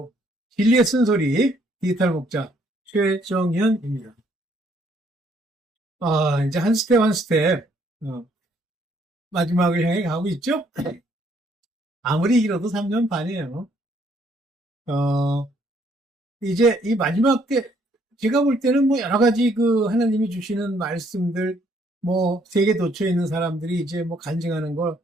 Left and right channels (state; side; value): normal; both; correlation 0.67